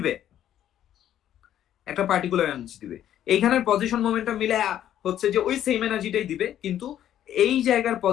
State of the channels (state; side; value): quieter; right; 11.2 dB